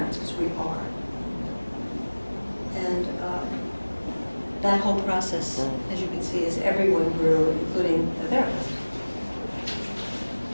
Because we are. And that whole process, as you can see, is everyone grew, including the therapist.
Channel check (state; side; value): inverted; both; correlation -1.00